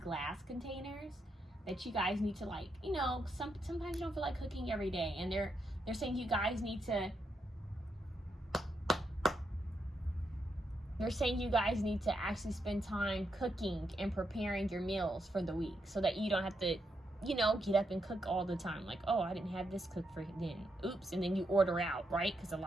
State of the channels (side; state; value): both; normal; correlation 0.81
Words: containers that you guys need to, like, you know, sometimes you don't feel like cooking every day, and they're saying you guys need to. They're saying you guys need to actually spend time cooking and preparing your meals for the week so that you don't have to, you know, get up and cook all the time. Like, oh, I didn't have this cooked for then. Oops. And then you order out, right? Because a